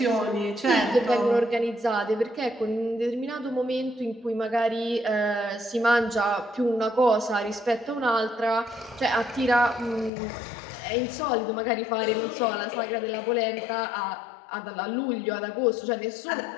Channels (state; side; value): drops out; right; at 10.1 s